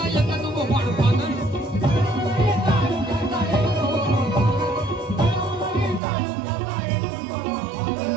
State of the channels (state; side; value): drops out; left; at 6.0 s